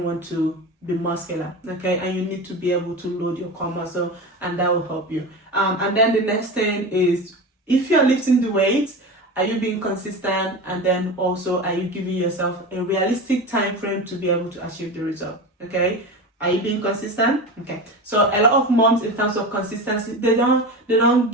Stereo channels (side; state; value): both; normal; correlation 0.27